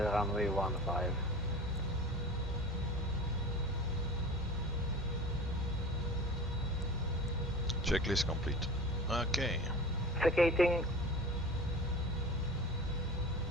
15. Checklist complete. Okay. Vacating.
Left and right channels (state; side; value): normal; both; correlation 0.36